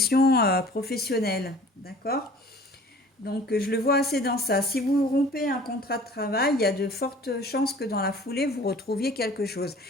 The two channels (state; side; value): normal; both; correlation 0.47